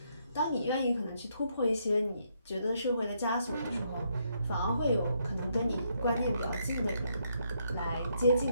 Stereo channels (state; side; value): inverted; both; correlation -0.75